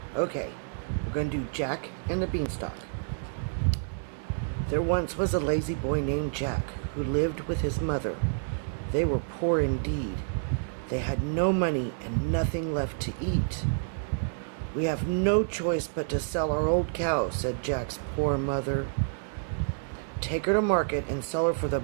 Okay, we're going to do Jack and the Beanstalk. There once was a lazy boy named Jack who lived with his mother. They were poor indeed. They had no money and nothing left to eat. "We have no choice but to sell our old cow," said Jack's poor mother. "Take her to market and sell her for the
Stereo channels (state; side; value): silent; left; 59 dB below the other